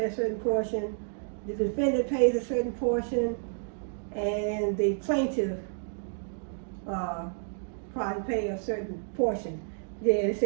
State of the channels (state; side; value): silent; left; digital silence